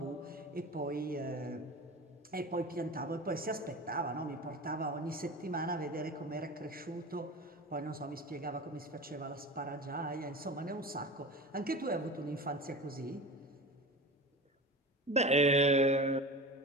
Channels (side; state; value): both; normal; correlation 0.32